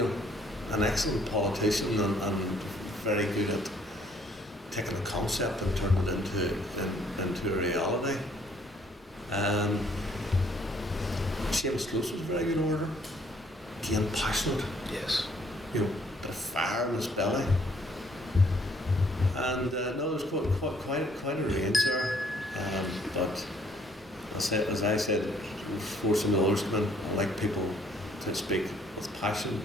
know, an excellent politician and very good at taking a concept and turning it into a reality. Seamus Close was a very good orator. Again, passionate. Yes. You know, bit of fire in his belly. And no, there's quite a range there. But as I said, before some of the others come in, I like people to speak with passion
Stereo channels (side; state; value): both; normal; correlation 0.64